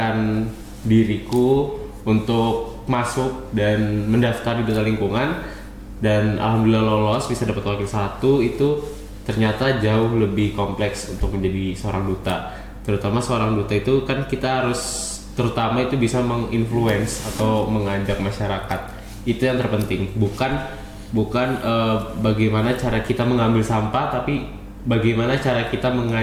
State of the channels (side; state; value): both; identical; correlation 1.00